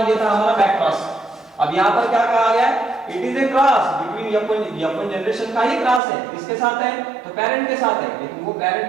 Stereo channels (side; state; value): left; drops out; at 6.0 s